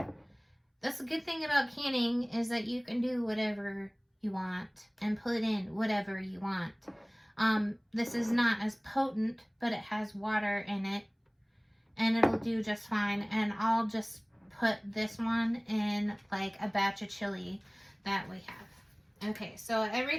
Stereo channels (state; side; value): identical; both; correlation 1.00